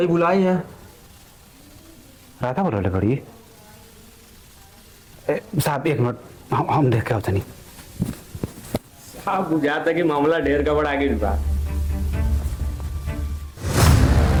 बुलाई है। राधा बोला बड़ी साहब एक मिनट हम देख के होता नहीं। साहब बुझाता कि मामला ढेर का बड़ा आगे बा।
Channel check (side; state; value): both; identical; correlation 1.00